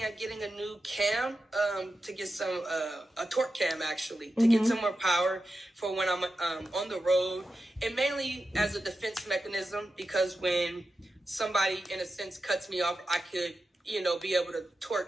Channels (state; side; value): normal; both; correlation 0.90